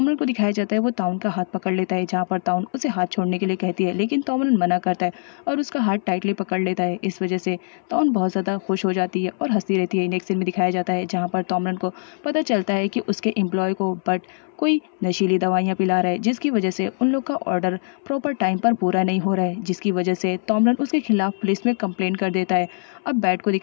को दिखाया जाता है वो ताउन का हाथ पकड़ लेता है, जहाँ पर ताउन उसे हाथ छोड़ने के लिए कहती है, लेकिन तोमरन मना करता है और उसका हाथ टाइटली पकड़ लेता है। इस वजह से ताउन बहुत ज़्यादा खुश हो जाती है और हंसती रहती है। नेक्स्ट सीन में दिखाया जाता है जहाँ पर तोमरन को पता चलता है कि उसके एम्प्लॉय को बट कोई नशीली दवाइयाँ पिला रहा है, जिसकी वजह से उन लोग का ऑर्डर प्रॉपर टाइम पर पूरा नहीं हो रहा है, जिसकी वजह से तोमरन उसके खिलाफ पुलिस में कंप्लेंट कर देता है। अब बैट को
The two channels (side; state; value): right; silent; 62 dB below the other